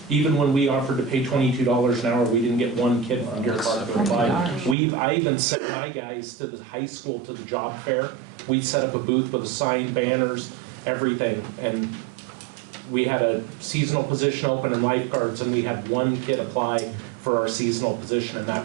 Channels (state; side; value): drops out; left; at 4.8 s